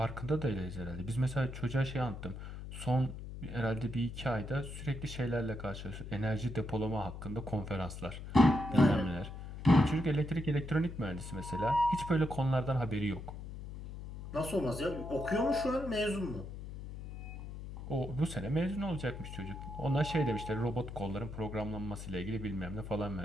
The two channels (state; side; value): noise; left; hum, 9 dB below the sound